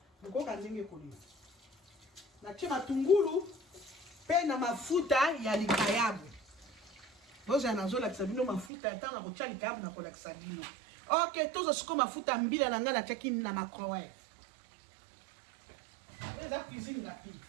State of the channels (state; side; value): drops out; left; at 8.7 s